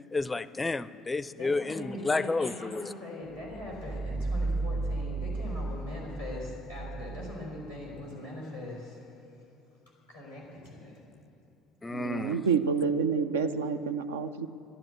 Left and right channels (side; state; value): both; normal; correlation 0.47